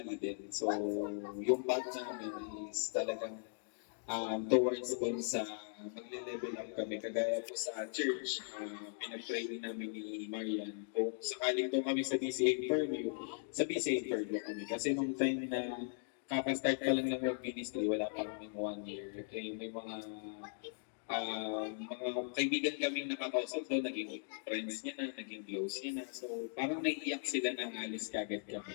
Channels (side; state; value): right; silent; digital silence